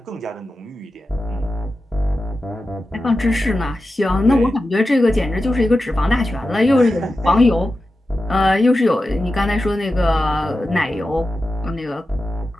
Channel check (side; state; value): both; normal; correlation 0.92